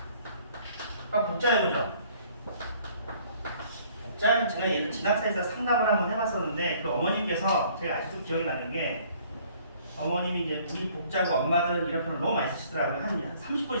복자여보죠. 복자는 제가 예를 진학사에서 상담을 한번 해봤었는데 그 어머님께서 제가 아직도 기억이 나는 게 어머님이 이제 우리 복자고 엄마들 이런 표현을 너무 많이 쓰시더라고요. 한 30분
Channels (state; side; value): inverted; both; correlation -0.58